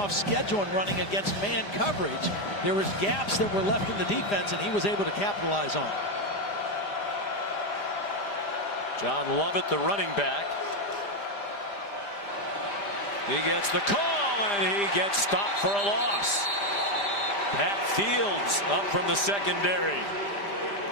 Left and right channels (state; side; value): late; right; 5.0 ms